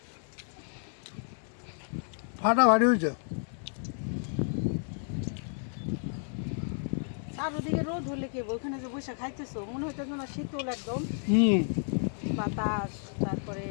ফাটাফাটি হয়েছে। চারদিকে রোদ হলে কি হবে? ওখানে যে বসে খাইতেছো মনে হইতেছে না শীতল একদম, হুম বাতাস, তারপরে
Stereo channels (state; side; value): silent; right; 57 dB below the other